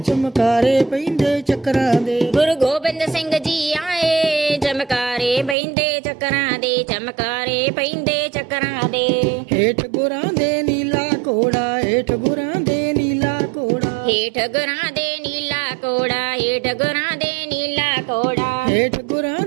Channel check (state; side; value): drops out; left; at 5.6 s